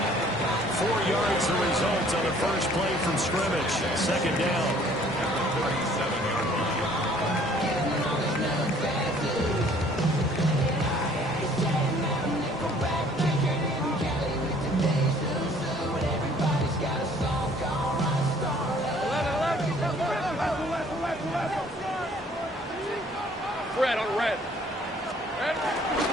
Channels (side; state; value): both; normal; correlation 0.57